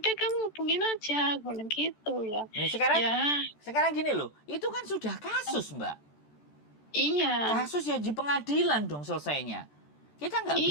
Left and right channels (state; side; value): late; right; 14 ms